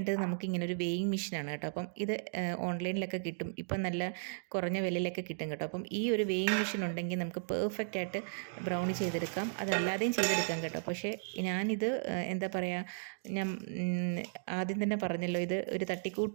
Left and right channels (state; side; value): silent; left; digital silence